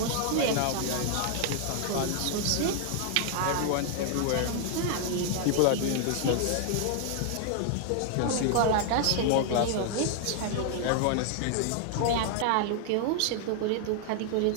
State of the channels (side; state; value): both; different; correlation 0.00